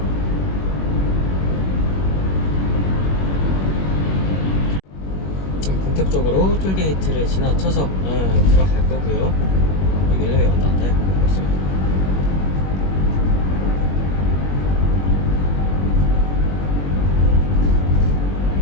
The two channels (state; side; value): late; right; 21 ms